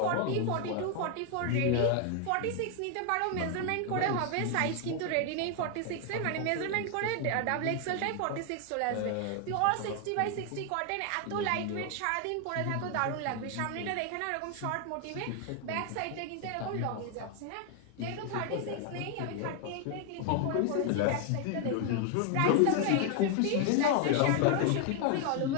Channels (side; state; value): both; different; correlation 0.00